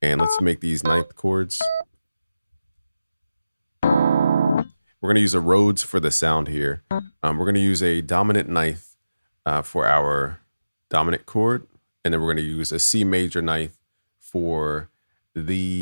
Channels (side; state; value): both; inverted; correlation -0.96